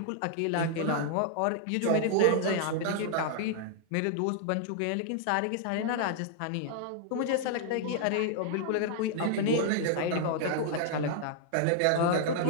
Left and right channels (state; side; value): different; both; correlation 0.00